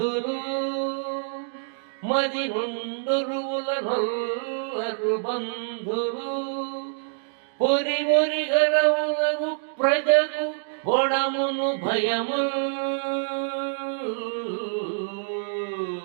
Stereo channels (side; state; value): left; silent; digital silence